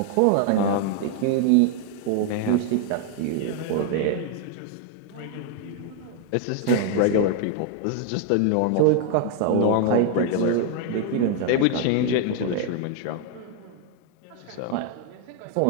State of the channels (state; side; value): different; both; correlation 0.00